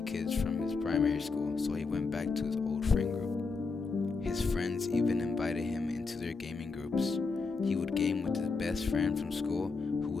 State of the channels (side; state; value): right; quieter; 4.4 dB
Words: kids from his primary school, so he went back to his old friend group. His friends even invited him into their gaming groups. He would game with his best friend from school, who